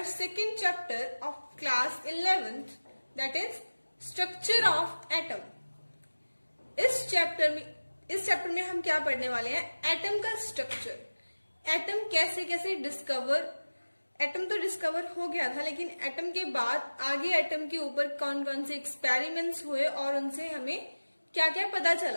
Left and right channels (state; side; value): inverted; both; correlation -1.00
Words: second chapter of class 11th, that is Structure of Atom. इस chapter में हम क्या पढ़ने वाले हैं? Atom का structure, atom कैसे कैसे एटम तो डिस्कवर हो गया था, लेकिन एटम के बाद आगे एटम के ऊपर कौन कौन से एक्सपेरिमेंट्स हुए और उनसे हमें क्या क्या पता